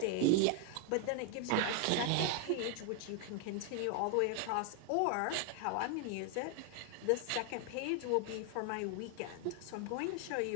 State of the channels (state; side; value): different; both; correlation 0.00